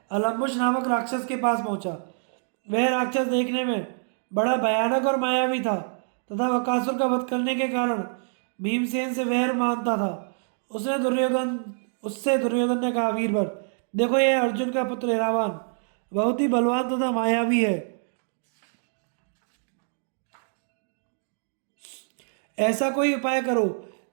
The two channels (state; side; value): silent; left; digital silence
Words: अलम्बुश नामक राक्षस के पास पहुंचा। वह राक्षस देखने में बड़ा भयानक और मायावी था तथा बकासुर का वध करने के कारण भीमसेन से वैर मानता था। उससे दुर्योधन ने कहा, वीरवर, देखो, यह अर्जुन का पुत्र इरावान बहुत ही बलवान तथा मायावी है। ऐसा कोई उपाय करो